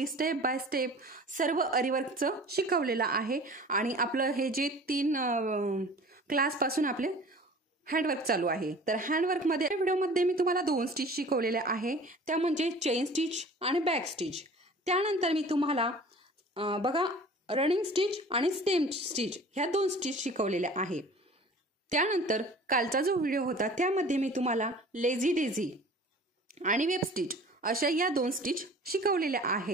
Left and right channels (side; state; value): both; normal; correlation 0.44